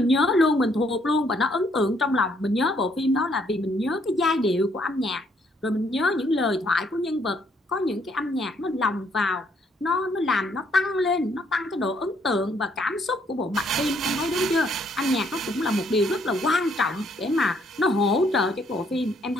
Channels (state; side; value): normal; both; correlation 0.69